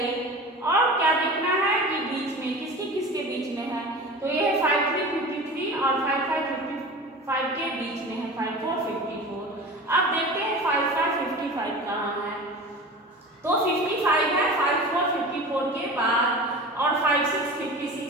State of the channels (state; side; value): normal; both; correlation 0.34